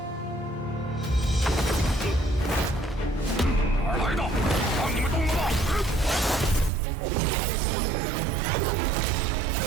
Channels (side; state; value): left; drops out; at 6.7 s